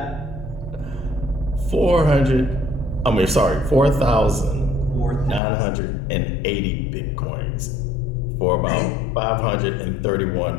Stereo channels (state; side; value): drops out; right; at 5.4 s